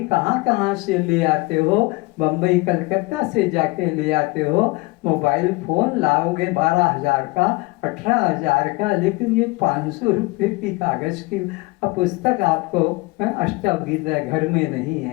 कहाँ कहाँ से ले आते हो, बम्बई कलकत्ता से जाके ले आते हो। मोबाइल फोन लाओगे 12,000 का, 18,000 का, लेकिन ये 500 रुपये की कागज की पुस्तक आपको अष्टगीता घर में नहीं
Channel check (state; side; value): quieter; right; 23.7 dB